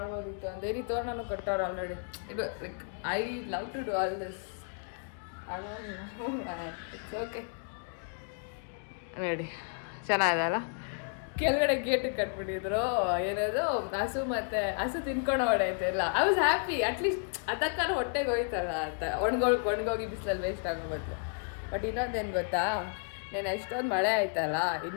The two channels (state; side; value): silent; right; 56 dB below the other